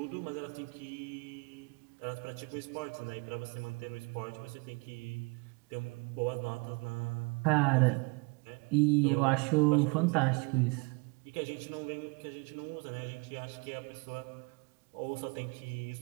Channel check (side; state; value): left; quieter; 30.0 dB